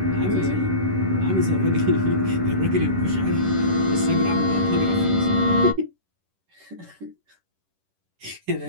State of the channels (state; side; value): late; left; 11 ms